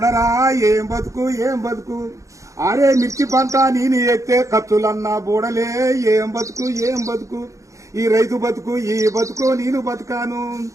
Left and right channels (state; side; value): late; left; 0.15 ms